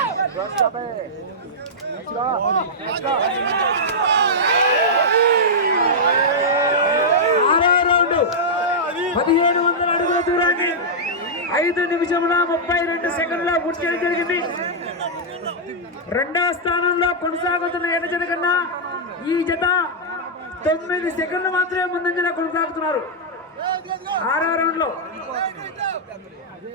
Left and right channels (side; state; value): both; normal; correlation -0.09